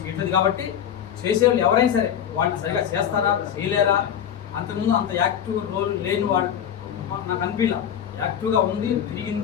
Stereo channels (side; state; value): right; quieter; 9.3 dB